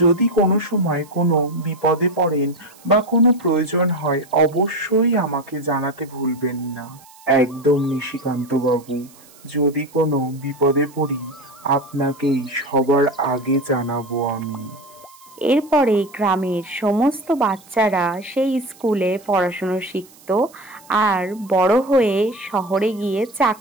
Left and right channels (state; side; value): noise; right; hiss, 25 dB below the sound